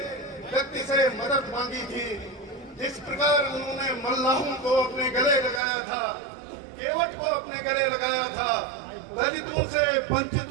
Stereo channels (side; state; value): left; drops out; at 5.6 s